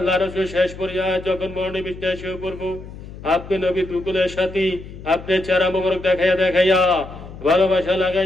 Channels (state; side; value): noise; left; hum, 14 dB below the sound